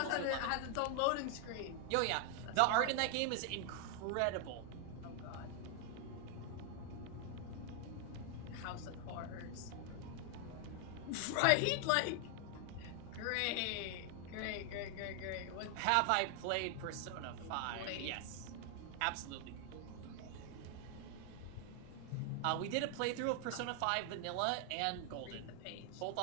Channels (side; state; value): both; different; correlation 0.00